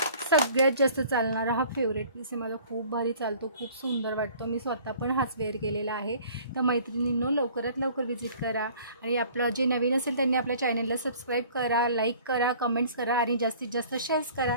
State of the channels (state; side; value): inverted; both; correlation -0.51